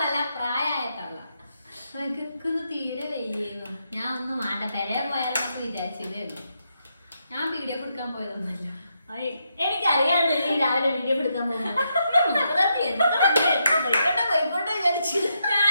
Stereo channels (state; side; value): inverted; both; correlation -0.81